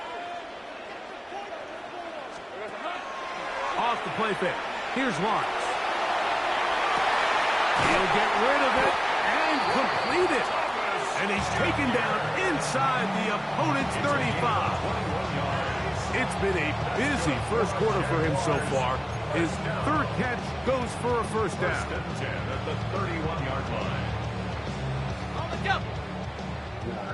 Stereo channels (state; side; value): identical; both; correlation 1.00